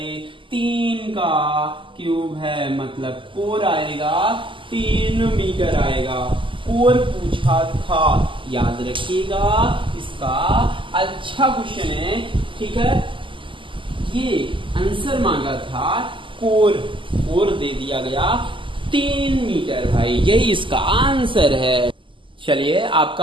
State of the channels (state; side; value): late; left; 0.25 ms